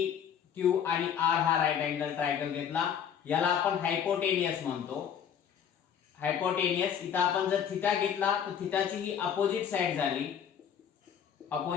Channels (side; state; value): right; quieter; 8.3 dB